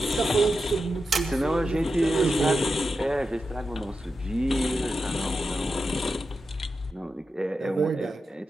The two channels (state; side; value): normal; both; correlation 0.89